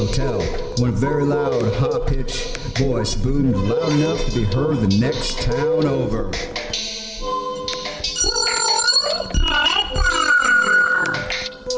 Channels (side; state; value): both; identical; correlation 1.00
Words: hotel, when a very loud, high-pitched voice boomed loud enough to be heard the next town over.